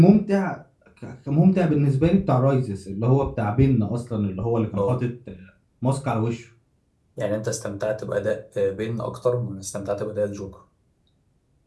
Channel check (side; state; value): both; identical; correlation 1.00